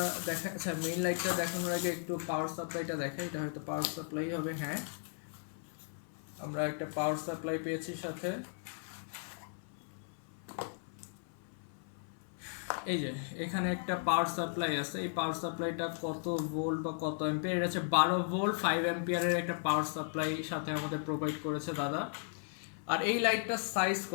দেখা, আচ্ছা মেইন লাইটটা দেখানোর আগে একটু পাওয়ার সাপ্লাইটা দেখাই। এটা হয়তো পাওয়ার সাপ্লাই হবে, হ্যাঁ আমরা একটা পাওয়ার সাপ্লাই পেয়েছি সাথে। এই যে এখানে একটা পাওয়ার সাপ্লাই আছে, এই পাওয়ার সাপ্লাইটা কত ভোল্ট বা কত অ্যাম্পিয়ার, এটা হচ্ছে 12 ভোল্ট 5 অ্যাম্পিয়ারের একটা পাওয়ার সাপ্লাই সাথে আমাদের প্রোভাইড করেছে দাদা। আর এই লাইটটার সাইজ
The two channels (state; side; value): silent; right; 54 dB below the other